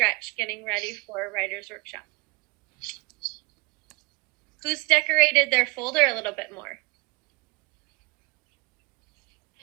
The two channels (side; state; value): left; quieter; 27.3 dB